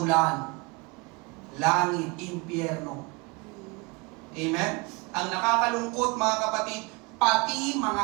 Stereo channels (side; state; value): left; quieter; 27.5 dB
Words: langit, impyerno. Amen? Ang nakakalungkot, mga kapatid, pati